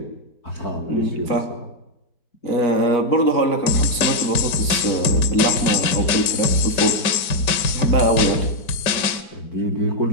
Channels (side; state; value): right; late; 5.2 ms